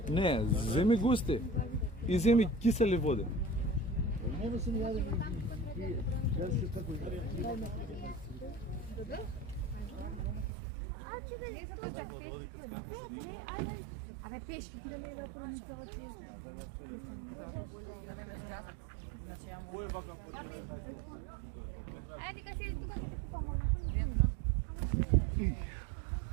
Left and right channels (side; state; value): left; drops out; at 10.5 s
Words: Не, земи густи. И земи кисели води. Нема се ни јаде. Јас се така. Абе, пешки ќе да ме да промислава ти. Ајде дека седи тука ќе ти помогнам.